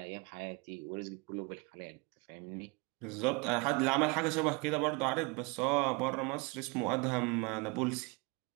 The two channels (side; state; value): left; quieter; 29.2 dB